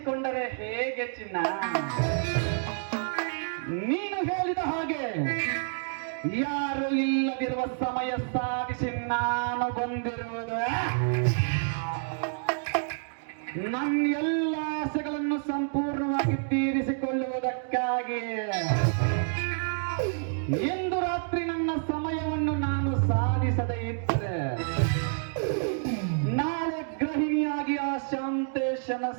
ಹೇಗೆ ಚಿನ್ನ? ನೀನು ಹೇಳಿದ ಹಾಗೆ ಯಾರು ಇಲ್ಲದಿರುವ ಸಮಯ ಸಾಧಿಸಿ ನಾನು ಬಂದಿರುವುದು ನನ್ನ ಎಲ್ಲ ಆಸೆಗಳನ್ನು ಸಂಪೂರ್ಣವಾಗಿ ತೀರಿಸಿಕೊಳ್ಳುವುದಕ್ಕಾಗಿ. ಇಂದು ರಾತ್ರಿ ನನ್ನ ಸಮಯವನ್ನು ನಾನು ಸಾಧಿಸದೇ ಇದ್ದರೆ ನಾಳೆ ಗೃಹಿಣಿಯಾಗಿ ಆ ಶಾಂತೇಶನ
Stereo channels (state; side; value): silent; left; digital silence